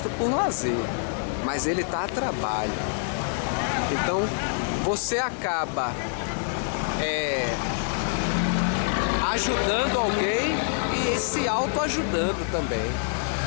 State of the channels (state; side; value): silent; right; digital silence